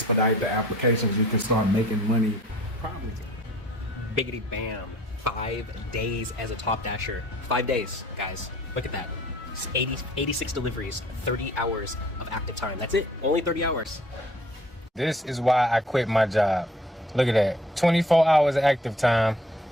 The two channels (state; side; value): normal; both; correlation 0.54